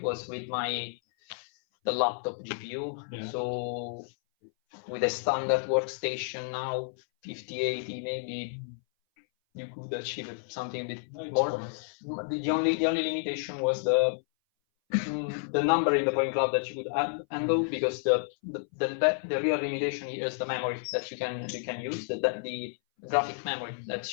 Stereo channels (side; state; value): right; silent; 57 dB below the other